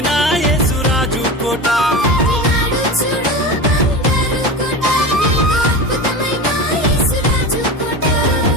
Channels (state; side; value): normal; both; correlation 0.27